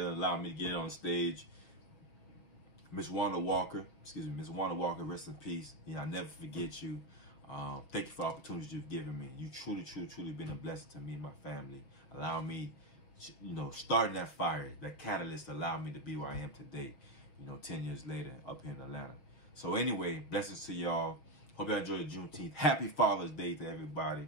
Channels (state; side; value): late; right; 6.8 ms